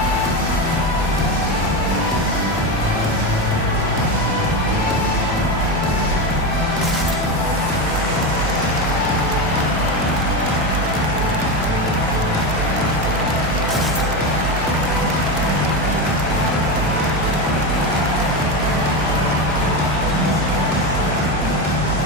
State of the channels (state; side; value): normal; both; correlation 0.16